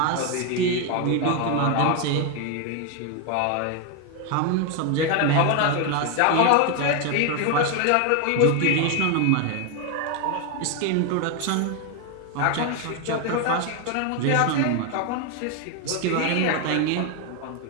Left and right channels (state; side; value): different; both; correlation 0.01